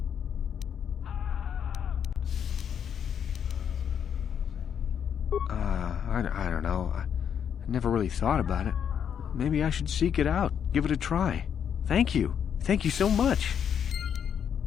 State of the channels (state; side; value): quieter; right; 8.2 dB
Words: I don't know. I never really thought about it. Maybe I should seek it out, give it a try. Thank you. Thank you so much.